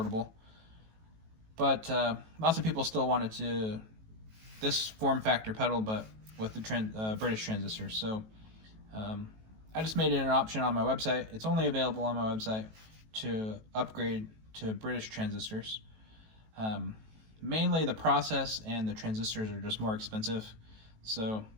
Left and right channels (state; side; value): late; left; 18 ms